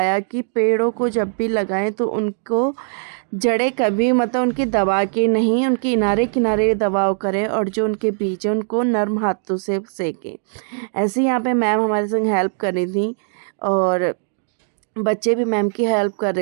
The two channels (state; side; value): silent; left; 66 dB below the other